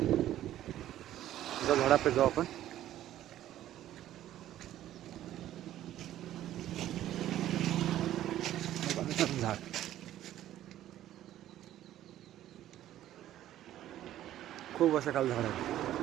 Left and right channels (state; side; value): quieter; left; 12.8 dB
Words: जो झाडाकडे जाऊ आपण. झाड खूप वर्षाकाल झाड आहे.